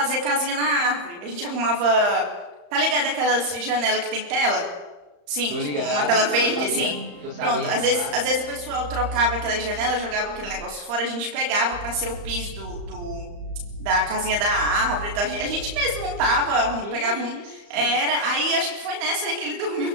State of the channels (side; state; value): left; late; 34 ms